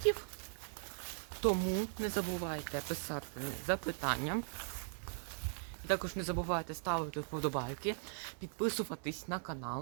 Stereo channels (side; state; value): left; silent; 52 dB below the other